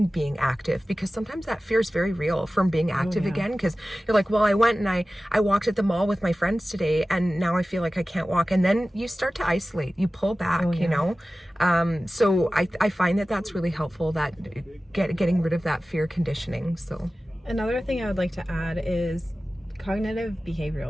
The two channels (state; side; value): normal; both; correlation 0.96